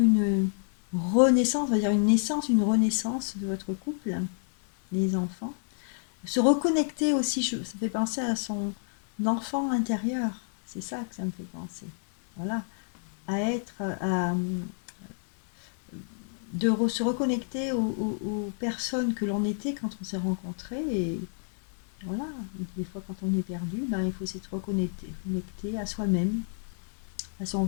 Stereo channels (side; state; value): right; silent; 59 dB below the other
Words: une renaissance, on va dire une naissance, une renaissance de votre couple, les enfants. Se reconnecter aussi, ça fait penser à son enfant intérieur, c'est ça que ça me fait penser. Voilà, se reconnecter aux personnes que l'on était quand on s'est rencontrés, et voilà, des fois quand on est perdu, il faut s'être reconnecter à soi-même, à son